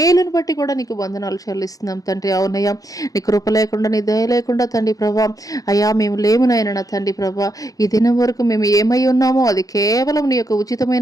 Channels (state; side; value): late; right; 0.17 ms